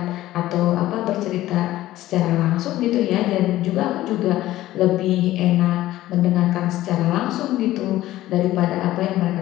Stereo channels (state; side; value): quieter; right; 15.2 dB